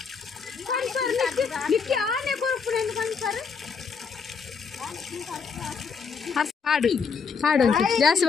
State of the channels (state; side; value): quieter; right; 5.7 dB